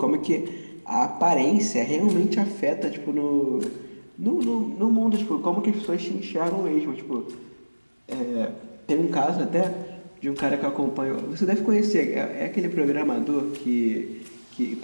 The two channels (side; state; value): both; inverted; correlation -1.00